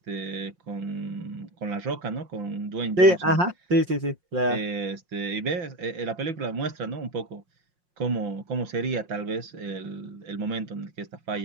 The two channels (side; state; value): left; late; 5.6 ms